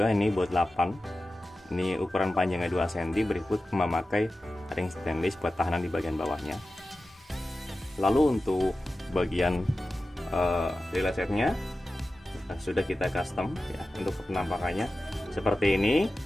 ini baut 8, ini ukuran panjangnya 2 cm, berikut memakai ring stainless buat tahanan di bagian bawahnya. Lalu untuk bagian relay setnya sudah kita custom ya, untuk penampakannya seperti ini.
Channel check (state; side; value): normal; both; correlation 0.94